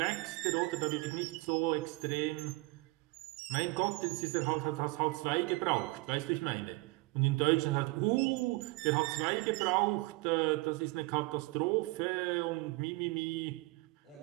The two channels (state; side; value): quieter; left; 24.0 dB